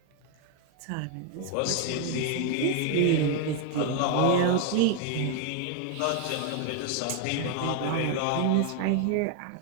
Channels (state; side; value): different; both; correlation 0.01